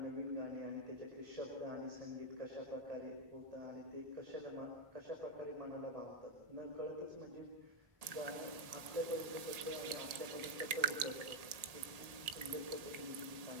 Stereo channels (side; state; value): left; late; 1.7 ms